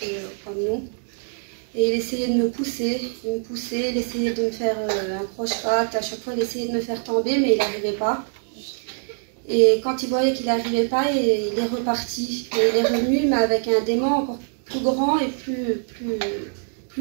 comme nous. Et il essayait de me pousser, il essayait de me faire un croche-patte, à chaque fois il essayait de me faire tomber, mais il n'arrivait pas. Et quand il voyait qu'il n'arrivait pas, il est reparti. Et il est revenu, mais avec un démon encore plus grand et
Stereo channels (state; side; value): silent; left; 62 dB below the other